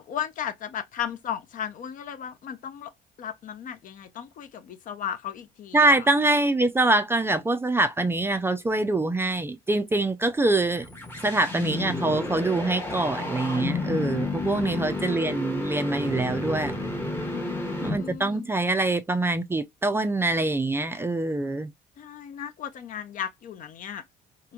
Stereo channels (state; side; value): normal; both; correlation 0.57